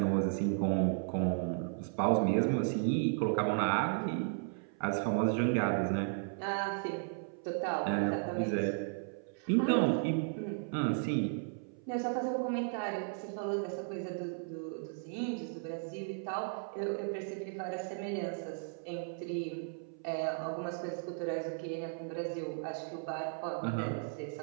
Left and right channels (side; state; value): left; silent; 54 dB below the other